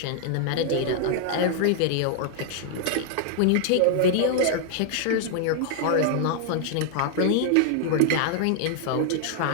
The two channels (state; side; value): different; both; correlation 0.00